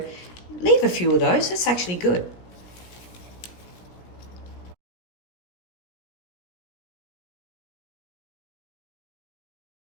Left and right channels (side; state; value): right; late; 17 ms